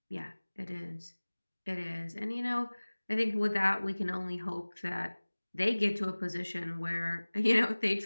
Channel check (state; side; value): inverted; both; correlation -1.00